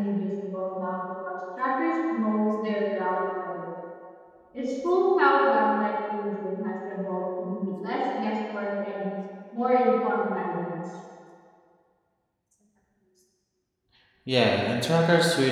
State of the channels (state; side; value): identical; both; correlation 1.00